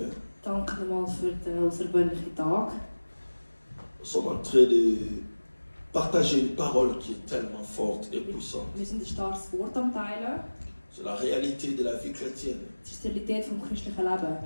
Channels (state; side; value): inverted; both; correlation -1.00